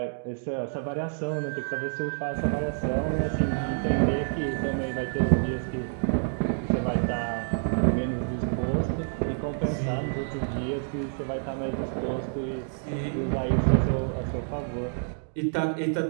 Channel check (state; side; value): silent; left; digital silence